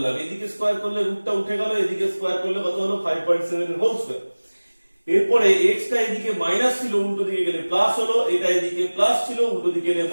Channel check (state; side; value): inverted; both; correlation -1.00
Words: এদিকে স্কোয়ার করলে রুটটা উঠে গেল, এদিকে স্কোয়ার করলে কত হলো? 5.7 এর হোল স্কোয়ার। এরপরে x টা এদিকে মাইনাস ছিল উল্টো দিকে গেলে প্লাস হলো, এটা এদিকে প্লাস ছিল উল্টো দিকে গেলে